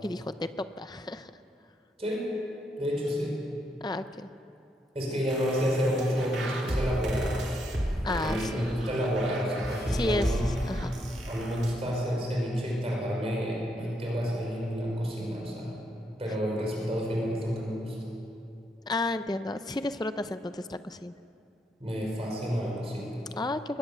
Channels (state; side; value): normal; both; correlation 0.77